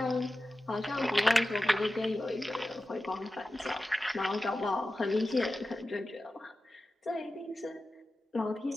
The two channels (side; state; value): both; normal; correlation 0.93